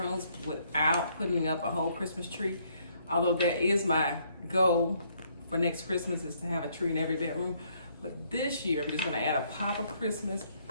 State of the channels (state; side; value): inverted; both; correlation -0.68